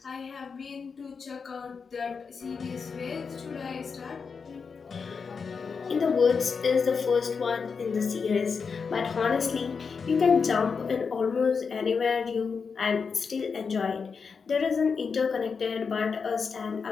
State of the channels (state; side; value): quieter; right; 5.5 dB